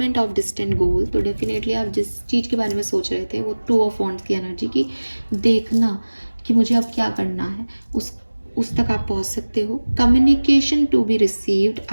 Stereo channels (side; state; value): both; inverted; correlation -1.00